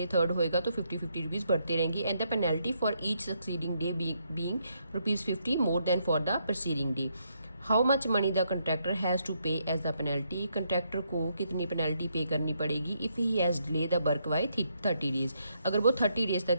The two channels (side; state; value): both; inverted; correlation -0.76